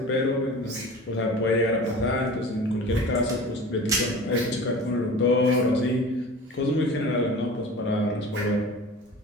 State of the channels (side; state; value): both; normal; correlation 0.38